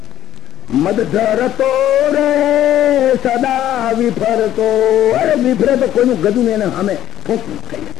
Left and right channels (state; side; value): quieter; right; 12.4 dB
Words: મદ ધરતો રે સદા વિફરતો, અરે વિફરે તો કોઈનું ગજું ને એને સામે ફૂંક થઈ.